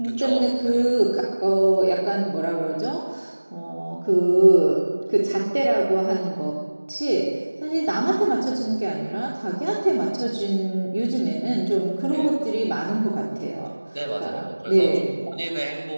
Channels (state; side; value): inverted; both; correlation -1.00